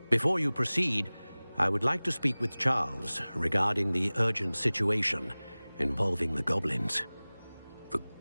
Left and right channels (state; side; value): inverted; both; correlation -0.99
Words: Before you proceed, I would like to speak with Charles regarding the urgent situation involving the goblins. The